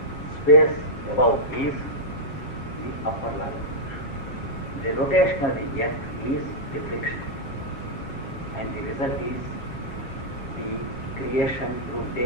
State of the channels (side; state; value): right; late; 7.4 ms